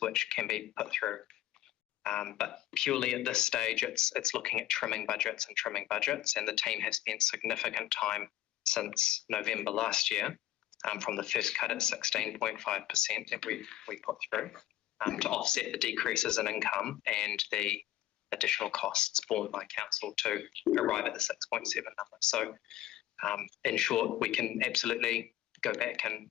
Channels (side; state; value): right; quieter; 13.6 dB